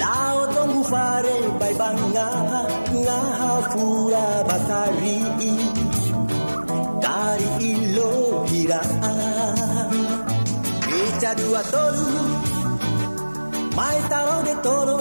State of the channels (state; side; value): inverted; both; correlation -1.00